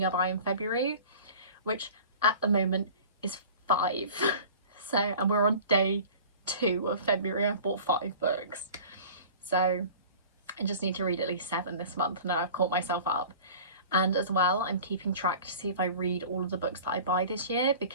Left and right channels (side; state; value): both; inverted; correlation -0.42